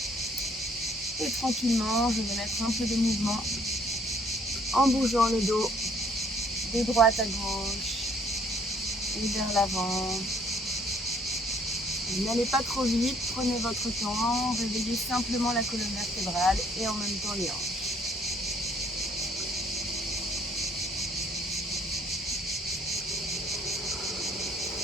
Et tranquillement, je vais mettre un peu de mouvement en bougeant le dos de droite à gauche et vers l'avant. N'allez pas trop vite, prenez votre temps, réveillez simplement la colonne vertébrale et en même temps les hanches.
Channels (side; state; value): both; normal; correlation 0.62